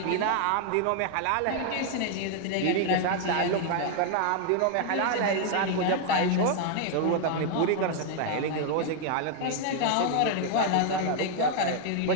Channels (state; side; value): different; both; correlation 0.00